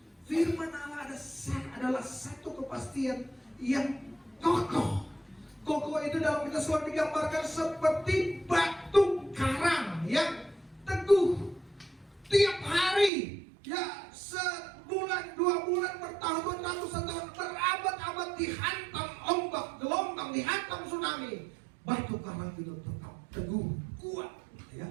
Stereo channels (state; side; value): drops out; left; at 13.1 s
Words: Firman Allah adalah satu kepastian yang kokoh. Kokoh itu dalam kitab Keluaran digambarkan seperti batu karang yang teguh. Tiap hari, ya sebulan, 2 bulan, bertahun, ratusan tahun, berabad-abad dihantam ombak, gelombang, dihantam tsunami. Batu karang itu tetap teguh, kuat, ya.